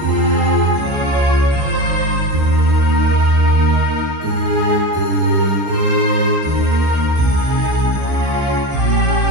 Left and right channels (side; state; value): left; late; 14 ms